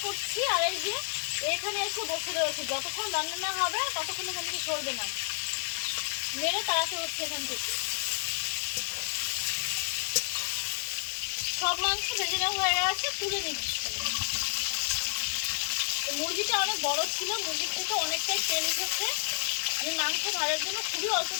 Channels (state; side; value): silent; right; digital silence